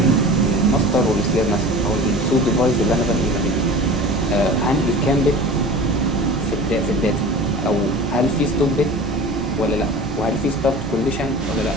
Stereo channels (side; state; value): both; normal; correlation 0.37